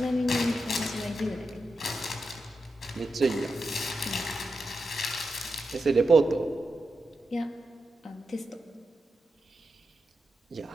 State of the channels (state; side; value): normal; both; correlation 0.88